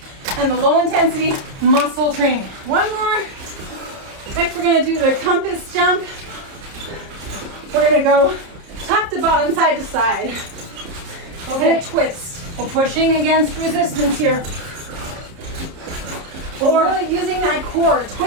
and the low intensity muscle training. One more. Next we're going to do the compass jump. We're going to go top to bottom, side to side. Okay. And a twist. We're pushing against resistance here. Or really using that core,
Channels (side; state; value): left; late; 30 ms